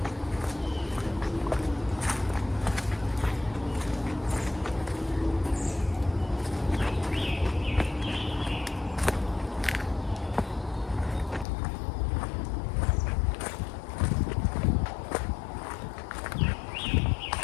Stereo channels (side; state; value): right; drops out; at 11.5 s